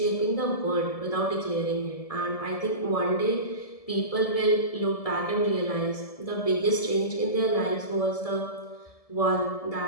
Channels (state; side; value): late; right; 1.7 ms